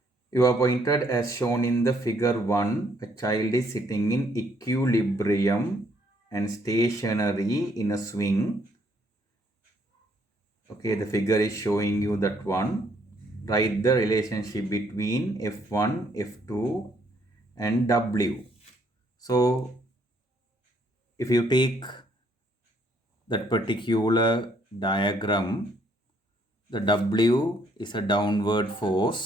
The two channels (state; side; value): normal; both; correlation 0.68